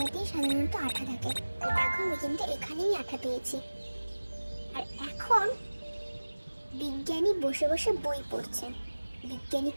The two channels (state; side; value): inverted; both; correlation -1.00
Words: সাধারণত আঠা থাকে। তো দেখো আমি কিন্তু এখানেই আঠা পেয়েছি। আর এখন বিজ্ঞানী বসে বসে বই পড়ছেন। বিজ্ঞানী